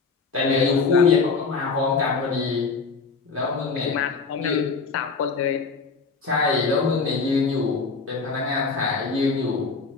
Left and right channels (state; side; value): quieter; right; 4.5 dB